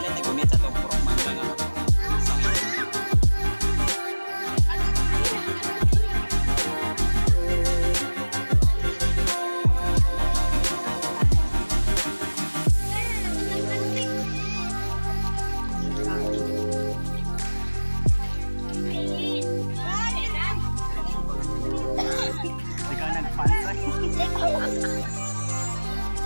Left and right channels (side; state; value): both; inverted; correlation -1.00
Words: nagumit sa itong proman lang ako. Ikaw nagpansa.